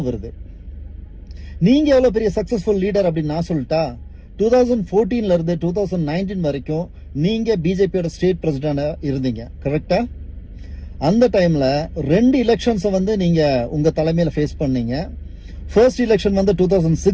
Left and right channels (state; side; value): identical; both; correlation 1.00